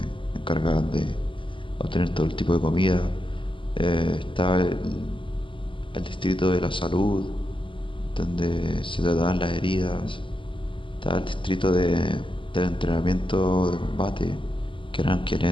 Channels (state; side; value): late; right; 0.25 ms